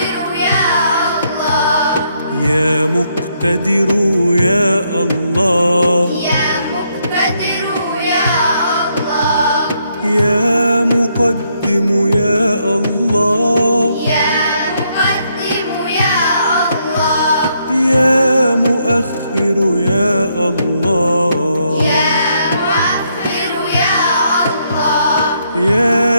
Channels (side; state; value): both; inverted; correlation -0.75